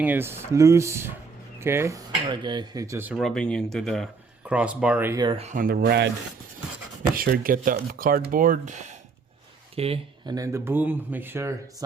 is loose. Okay, all right guys, it's just rubbing into the crossbar right here on the rad. Make sure to get the cardboard. Okay, and then the boom, make sure it's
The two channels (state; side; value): quieter; left; 4.7 dB